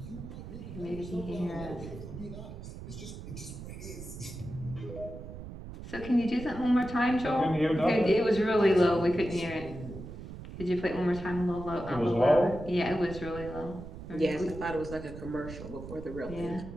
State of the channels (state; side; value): noise; right; rumble, 11 dB below the sound